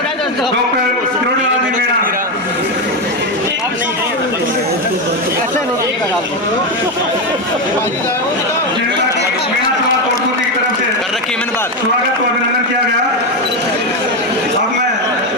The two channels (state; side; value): normal; both; correlation 0.10